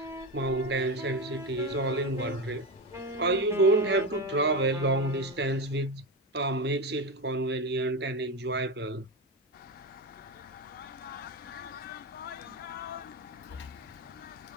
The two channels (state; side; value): normal; both; correlation 0.16